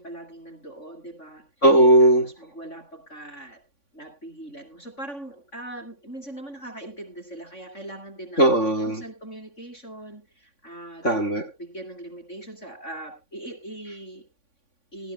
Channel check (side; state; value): right; late; 3.5 ms